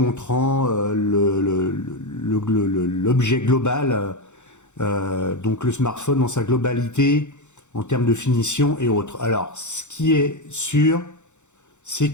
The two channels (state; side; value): late; right; 0.84 ms